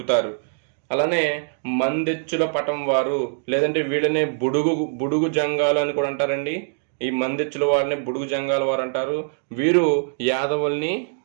అలానే మందెచ్చుల పటం వారు లేదంటే వీళ్ళనే బుడుగు జంగాలు అని కూడా అంటారండి. ఈ మందెచ్చుల వారిని బుడుగు జంగాల వారు అంటారు. వీరు యాదవుల్ని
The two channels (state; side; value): silent; left; digital silence